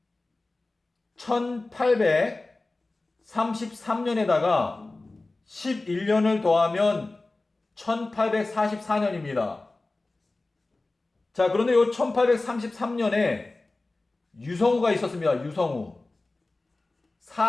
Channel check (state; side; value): quieter; right; 3.1 dB